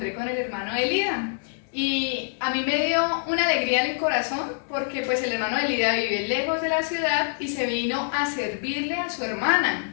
con el hermano de Lida. Y a mí me dio una alegría en el corazón porque pues el hermano de Lida vive lejos de la ciudad y se vino a servirle a su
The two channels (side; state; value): right; silent; 61 dB below the other